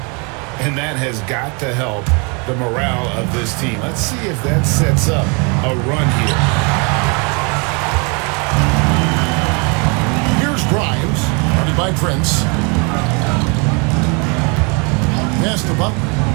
And that has got to help the morale of this team. Let's see if that sets up a run here. Here's Grimes, guarded by Prince. Pass to Butler.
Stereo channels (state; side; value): quieter; left; 32.6 dB